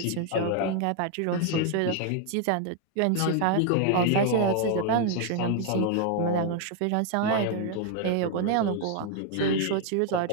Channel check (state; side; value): different; both; correlation 0.00